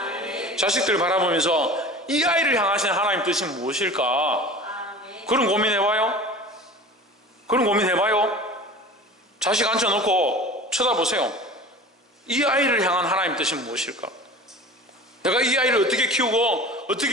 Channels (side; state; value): both; normal; correlation 0.38